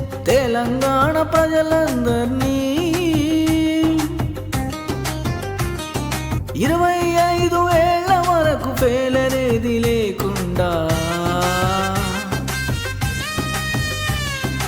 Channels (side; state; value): both; identical; correlation 1.00